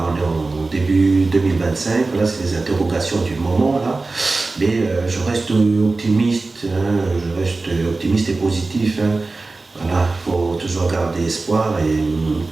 on est en début 2025. Là, c'est les interrogations du moment là. Mais je reste optimiste. Hein, je reste optimiste et positif. Hein. Voilà, il faut toujours garder espoir et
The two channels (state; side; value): quieter; left; 3.5 dB